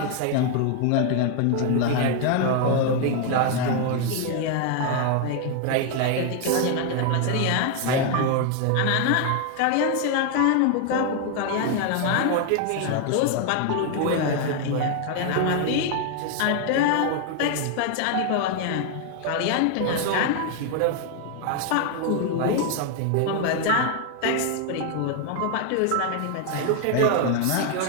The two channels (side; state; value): both; different; correlation 0.00